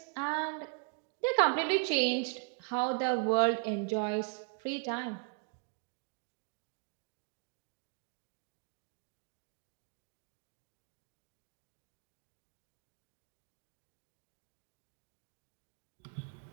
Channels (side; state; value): left; quieter; 38.7 dB